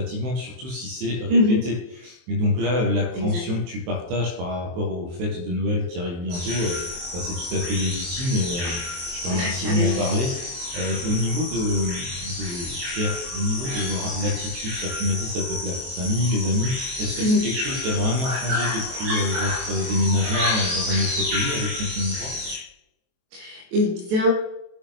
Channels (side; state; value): left; late; 23 ms